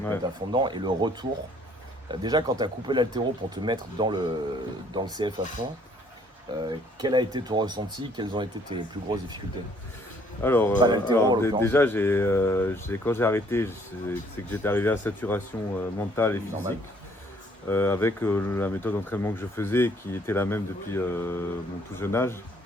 te Ouais. mettre à fond dedans. Et le retour, déjà quand tu as coupé l'haltéro pour te mettre dans le CF à fond, quel a été ton ressenti? Quelles ont été tes plus grosses difficultés? Alors, Pas l'haltéro, en l'occurrence. déjà, quand j'ai arrêté, c'est que j'étais arrivé à saturation mentale et Normal. physique. Avec la méthode d'entraînement que je faisais, qui était la même depuis mon tout jeune âge.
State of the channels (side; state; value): both; normal; correlation 0.62